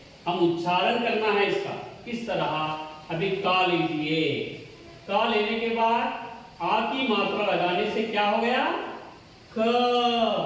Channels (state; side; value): identical; both; correlation 1.00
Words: हम उच्चारण करना है इसका किस तरह. अभी का लीजिए. का लेने के बाद आ की मात्रा लगाने से क्या हो गया? क.